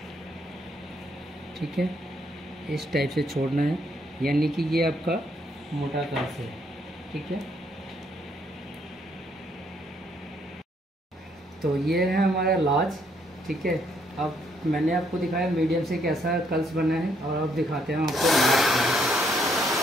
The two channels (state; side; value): normal; both; correlation 0.71